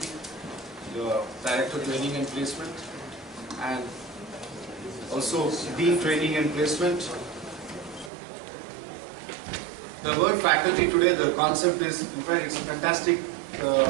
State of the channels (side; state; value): left; drops out; at 8.1 s